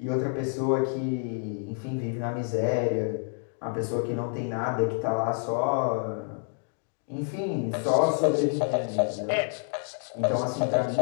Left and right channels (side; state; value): right; silent; digital silence